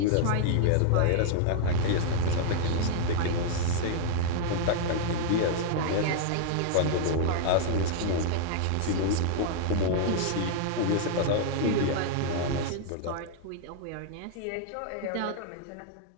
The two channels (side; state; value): both; different; correlation -0.01